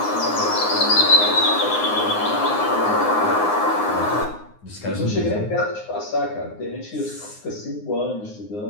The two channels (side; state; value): right; late; 9.6 ms